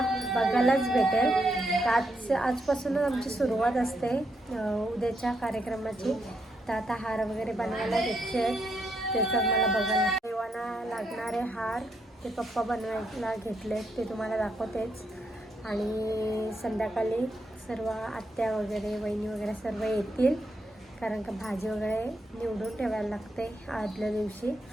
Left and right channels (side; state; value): both; normal; correlation 0.79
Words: बघायलाच भेटेल. तर आजपासूनच आमची सुरुवात असते उद्याच्या कार्यक्रमाची. तर आता हार वगैरे बनवायला घेतले, त्याचं मला बघायला देवांना लागणारे हार ते पप्पा बनवायला घेतले, ते तुम्हाला दाखवतेच. आणि संध्याकाळी सर्व आत्या वगैरे वहिनी वगैरे सर्व येतील, कारण का भाजी वगैरे निवडून ठेवायला लागते आदल्या दिवशी.